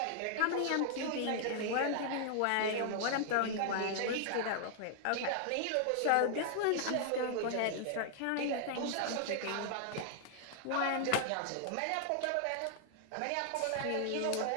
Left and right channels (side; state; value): both; different; correlation -0.01